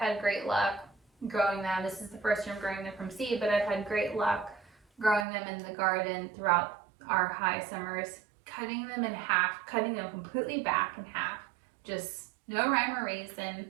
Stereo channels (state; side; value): drops out; left; at 5.2 s